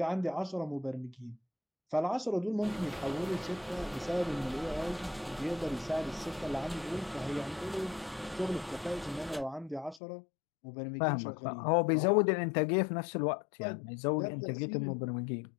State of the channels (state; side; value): drops out; right; at 10.0 s